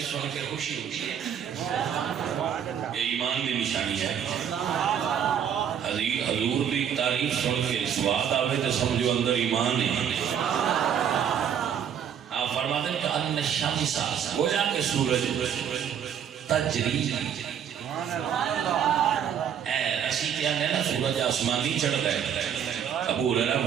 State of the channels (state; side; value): quieter; left; 8.6 dB